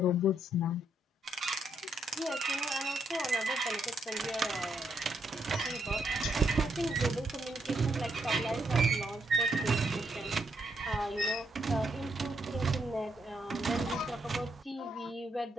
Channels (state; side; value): normal; both; correlation 0.77